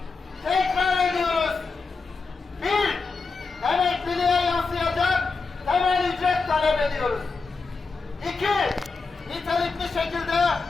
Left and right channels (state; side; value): quieter; right; 4.3 dB